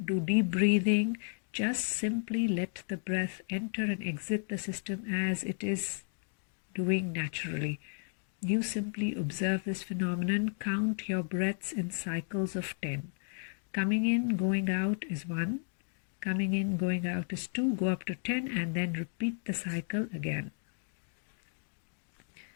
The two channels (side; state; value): right; silent; 55 dB below the other